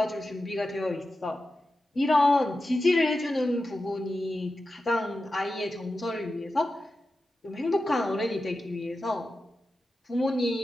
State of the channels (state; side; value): normal; both; correlation 0.92